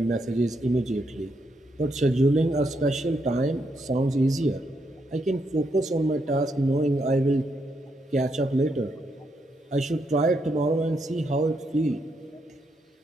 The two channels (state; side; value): normal; both; correlation 0.79